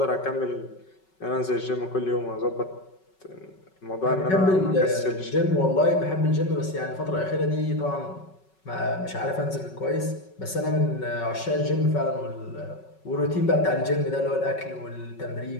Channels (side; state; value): right; late; 5.3 ms